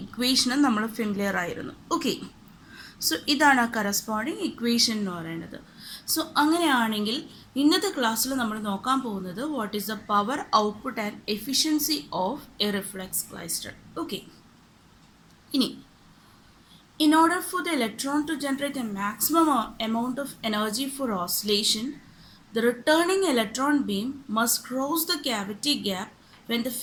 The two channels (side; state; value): both; identical; correlation 1.00